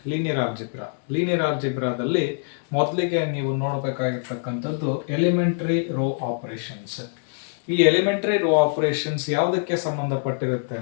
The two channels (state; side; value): silent; right; digital silence